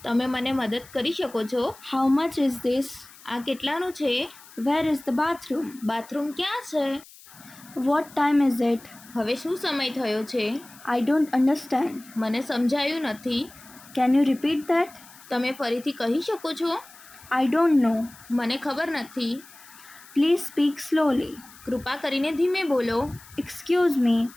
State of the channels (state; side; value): noise; left; hiss, 22 dB below the sound